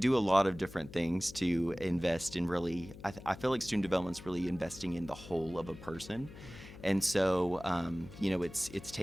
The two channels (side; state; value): left; noise; hum, 16 dB below the sound